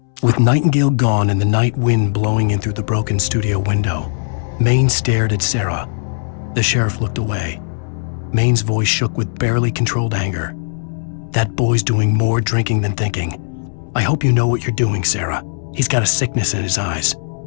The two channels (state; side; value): silent; right; 68 dB below the other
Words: With Nightingale gone and the night wind blowing in through the broken studio window, Maine stared at Sarah. The sheriff looked away. Maine's voice shook with barely controlled anger. That boy's doing more drinking than thinking. I hope you know what you're doing, Sarah. He's got a sickness in his eyes.